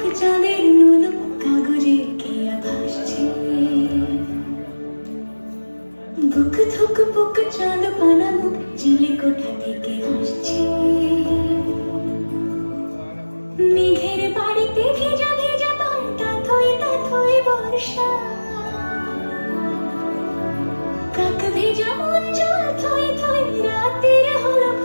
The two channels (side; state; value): both; inverted; correlation -1.00